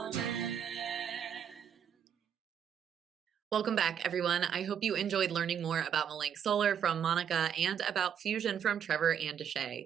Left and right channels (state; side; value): quieter; left; 8.4 dB